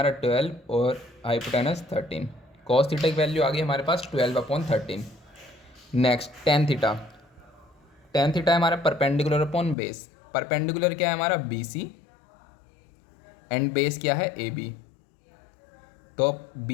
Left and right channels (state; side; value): drops out; right; at 9.8 s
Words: 12 और हाइपोटेनस 13। कॉस थीटा की वैल्यू आ गई हमारे पास 12/13। Next tan theta. Tan theta है हमारा परपेंडिकुलर अपॉन बेस। परपेंडिकुलर क्या है हमारा बी सी एंड बेस क्या है ए बी। तो